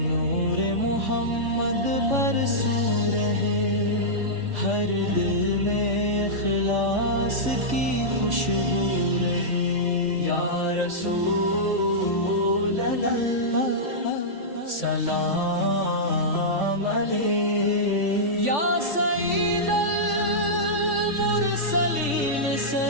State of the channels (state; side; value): late; left; 3.5 ms